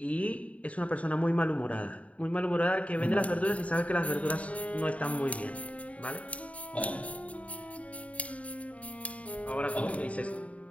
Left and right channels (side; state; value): right; late; 0.066 ms